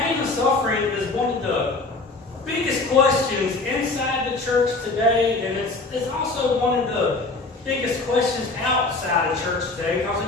and suffering is one of the biggest questions inside the church today, and it's also one of the biggest questions outside of church today.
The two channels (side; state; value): right; quieter; 3.5 dB